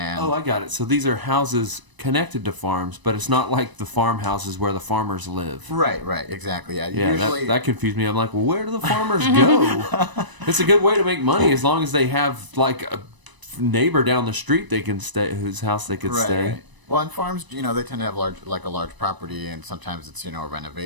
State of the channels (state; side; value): late; left; 1.0 ms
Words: Oh, I got it. So these are houses connected to farms, but it's not like the farmhouses where the farmers live. right, exactly. Yeah, Yeah, usually that confused me. I'm like, well, where do the farmers go? It's a good way to make money as long as they have like a neighbor down the street they can stay, whose house they could stay. Right. Well, on farms, they tend to have a large property, and sometimes it's a